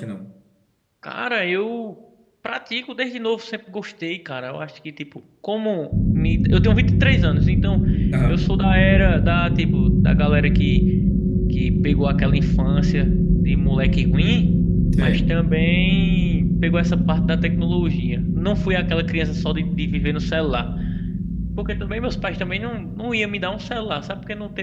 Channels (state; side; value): identical; both; correlation 1.00